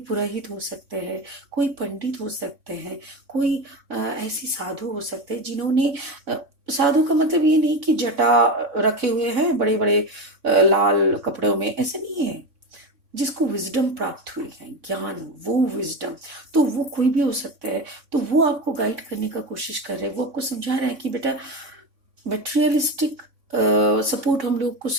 पुरोहित हो सकते हैं, कोई पंडित हो सकते हैं, कोई ऐसी साधु हो सकते हैं जिन्होंने साधु का मतलब ये नहीं कि जटा रखे हुए हैं बड़े बड़े लाल कपड़ों में, ऐसे नहीं है। जिसको विजडम प्राप्त हुई है, ज्ञान, वो विजडम, तो वो कोई भी हो सकता है। तो वो आपको गाइड करने का कोशिश कर रहे हैं, वो आपको समझा रहे हैं कि बेटा मटेरियलिस्टिक सपोर्ट हम लोग को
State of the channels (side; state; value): left; late; 3.6 ms